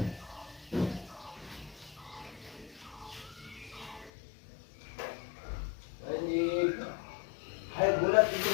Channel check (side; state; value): right; drops out; at 4.1 s